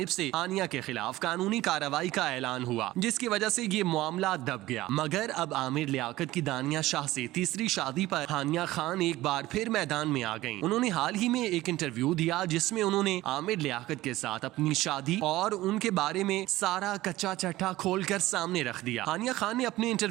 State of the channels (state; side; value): quieter; left; 17.0 dB